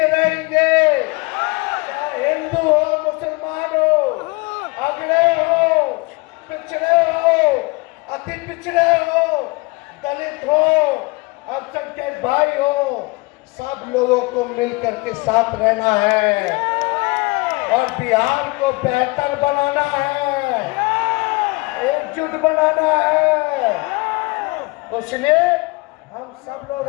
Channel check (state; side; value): quieter; right; 25.7 dB